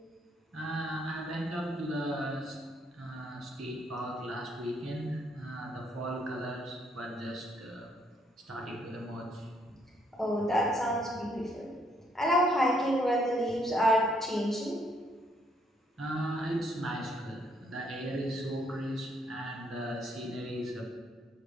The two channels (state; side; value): normal; both; correlation 0.70